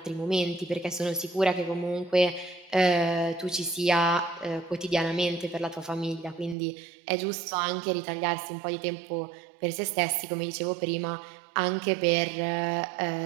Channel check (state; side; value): drops out; left; at 6.6 s